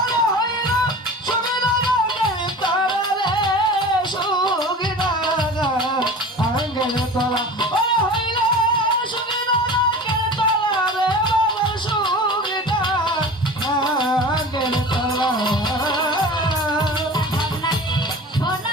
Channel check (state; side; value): normal; both; correlation 0.36